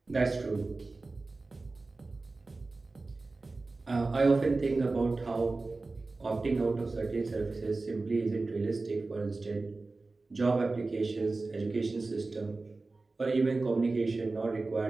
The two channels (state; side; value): quieter; left; 3.5 dB